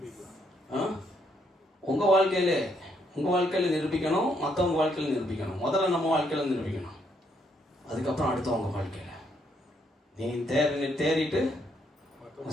உங்க வாழ்க்கையில நிரூபிக்கணும், மற்றவங்க வாழ்க்கையில நிரூபிக்கணும். முதல்ல நம்ம வாழ்க்கையில நிரூபிக்கணும், அதுக்கப்புறம் அடுத்தவங்க வாழ்க்கையில. நீ தேறிட்டு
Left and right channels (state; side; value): normal; both; correlation 0.73